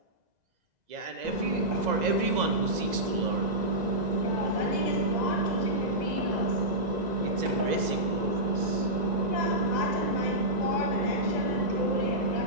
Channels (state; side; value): late; left; 2.0 ms